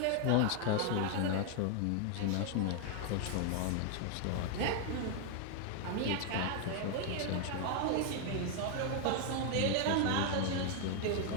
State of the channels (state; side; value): different; both; correlation 0.00